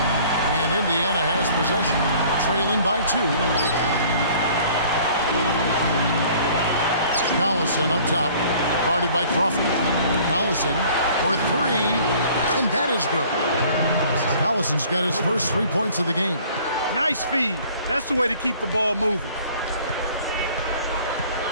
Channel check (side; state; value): both; inverted; correlation -0.53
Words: And Indiana has possession, trailing by 2. Collison up top, guarded by Crawford. Collison for 3, and that is good. Collison's got his first 3 points of the game. Nice feed. That's the way to keep the ball moving.